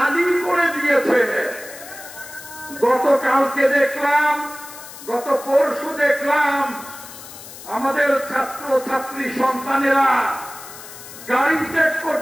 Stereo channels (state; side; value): noise; left; hiss, 15 dB below the sound